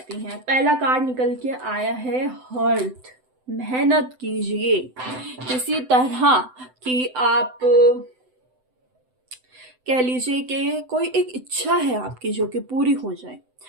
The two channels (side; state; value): left; late; 7.9 ms